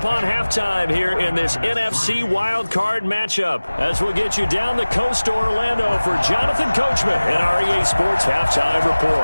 halftime here in this NFC wildcard matchup as we'll get you down the coast to Orlando for Jonathan Coachman in our EA Sports Halftime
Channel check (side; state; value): both; inverted; correlation -1.00